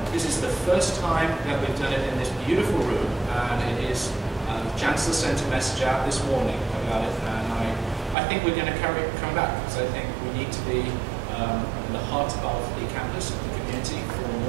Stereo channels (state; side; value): drops out; left; at 8.2 s